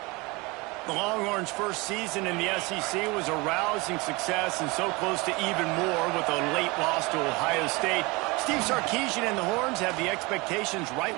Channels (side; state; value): left; quieter; 25.0 dB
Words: The Longhorns' first season in the SEC was a rousing success and so close to even more with a late loss to Ohio State. Steve Sarkisian and the Horns have the expectations right